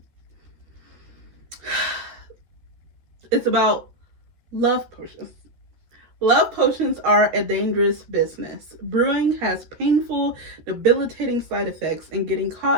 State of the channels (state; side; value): late; left; 13 ms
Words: it's about love potions. Love potions are a dangerous business. Brewing has painful, debilitating side effects, and getting